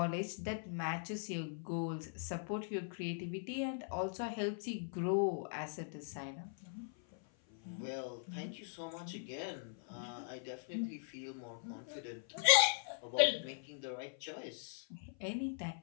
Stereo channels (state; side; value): silent; right; 51 dB below the other